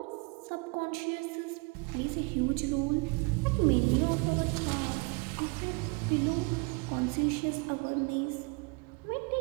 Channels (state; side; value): quieter; left; 30.2 dB